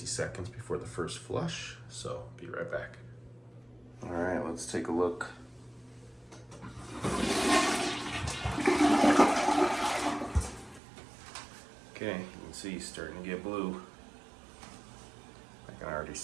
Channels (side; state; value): left; drops out; at 10.8 s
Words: seconds before the first flush, so be right back. All right, let's take a look. Okay, you can see it's starting to get blue. I can already